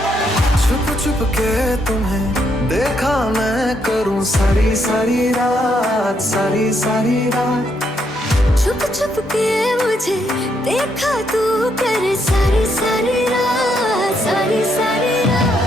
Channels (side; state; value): both; normal; correlation 0.76